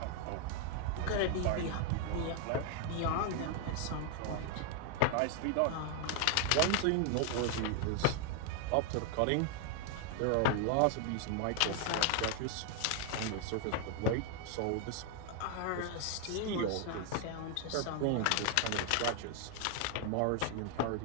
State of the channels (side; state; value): both; different; correlation 0.00